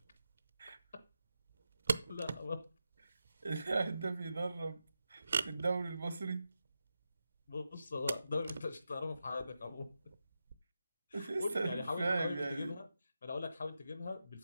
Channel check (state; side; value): inverted; both; correlation -0.89